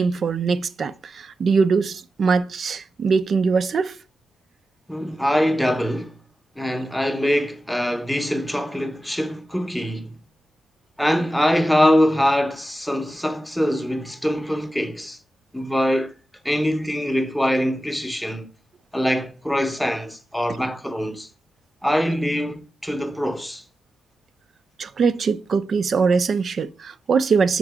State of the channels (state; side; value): normal; both; correlation 0.92